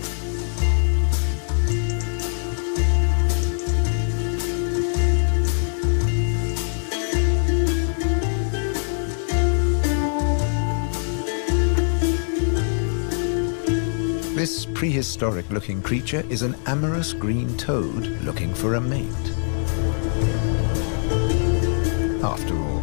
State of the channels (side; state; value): right; silent; 64 dB below the other